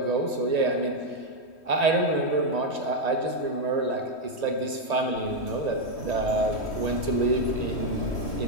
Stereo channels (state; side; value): late; right; 3.1 ms